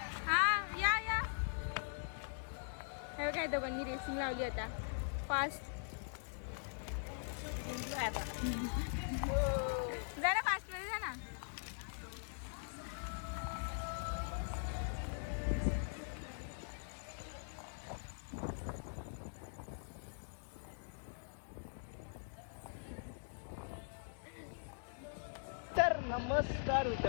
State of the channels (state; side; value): silent; right; digital silence